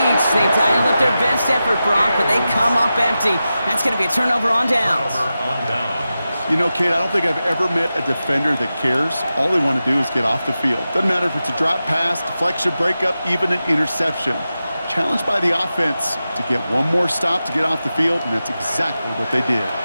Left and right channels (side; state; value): both; inverted; correlation -0.92